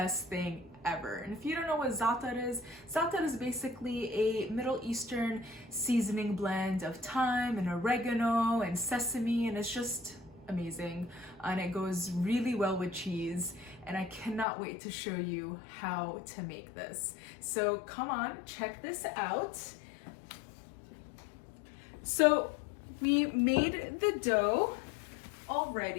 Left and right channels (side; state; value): right; drops out; at 14.5 s